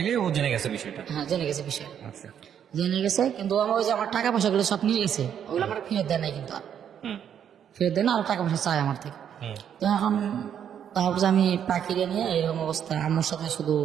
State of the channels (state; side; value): quieter; left; 8.9 dB